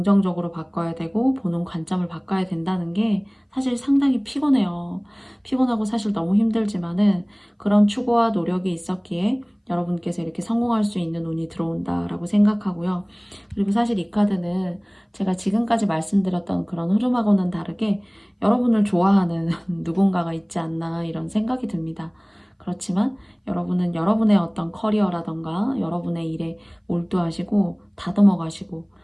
바꿔야 되고, 보는 관점을 바꿔야 된다는 게 사실 상당히 피곤해요. 피곤하고 사실 너무 힘들지만은 그런 추구와 노력이 있었기에 여러분께서 이렇게 성공할 수 있는 운이 들어온다라고 생각하고요. 그리고 사실 이 카드는 제가 지금까지 말씀드렸던 그런 흐름하고는 다르게 여러분을 좋아하는 누군가가 있지 않나, 이런 생각이 듭니다. 그렇지만 여러분은 여러분의 어떤 커리어라던가 여러분의 일에 몰두하시고 다듬어 가시고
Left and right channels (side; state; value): both; identical; correlation 1.00